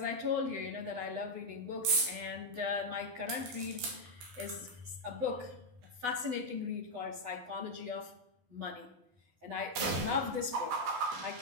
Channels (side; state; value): left; late; 12 ms